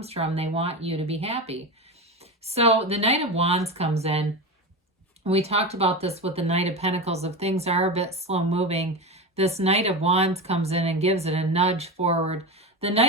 from they want you to be happy. So the Knight of Wands comes in. We talked about this with the Knight of Pentacles. If things are a bit slow moving, this Knight of Wands comes in and gives it a nudge forward. The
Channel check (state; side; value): normal; both; correlation 0.22